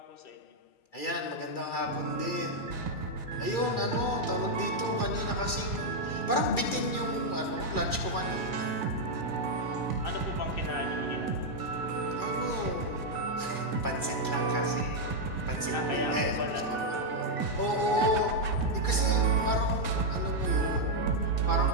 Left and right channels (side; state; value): right; late; 2.3 ms